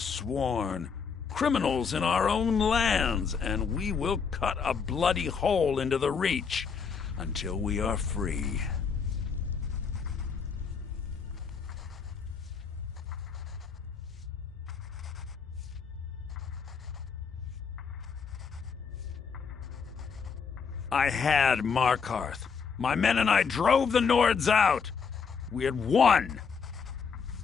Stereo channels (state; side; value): quieter; right; 5.9 dB